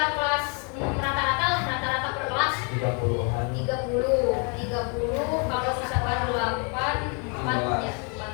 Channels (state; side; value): quieter; right; 36.5 dB